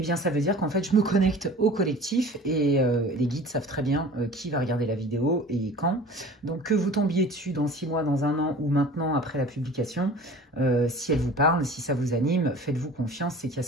bien, ça veut dire qu'en fait, je me connecte au collectif et les guides savent très bien qui va regarder la vidéo et quand. Donc, que vous tombiez dessus dans 6 mois, dans 1 an ou maintenant après la publication, si elle vous parle, si ça vous anime, faites-vous confiance, c'est qu'il y a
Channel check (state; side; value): normal; both; correlation 0.42